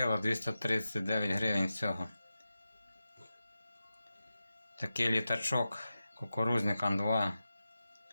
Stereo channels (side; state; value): both; inverted; correlation -0.92